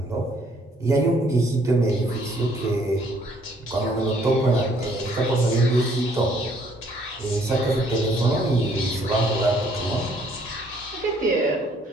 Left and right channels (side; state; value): both; normal; correlation 0.63